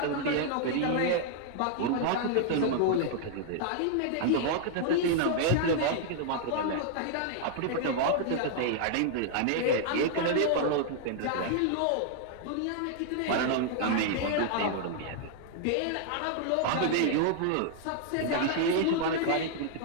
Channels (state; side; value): different; both; correlation -0.01